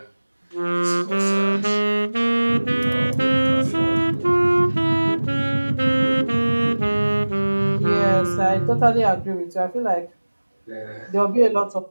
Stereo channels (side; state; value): both; inverted; correlation -1.00